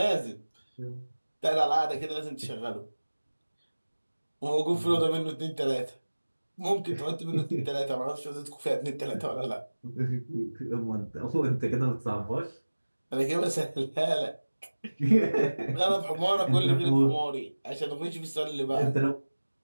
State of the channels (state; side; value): inverted; both; correlation -1.00